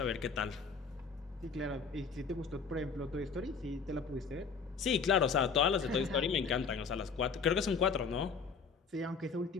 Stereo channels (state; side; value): quieter; right; 5.5 dB